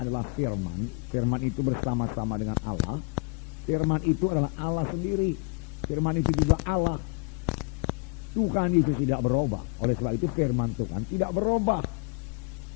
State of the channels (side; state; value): right; quieter; 33.5 dB